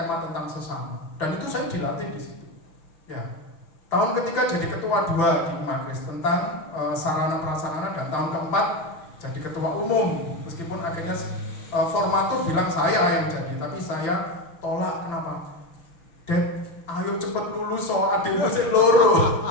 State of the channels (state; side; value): late; right; 6.1 ms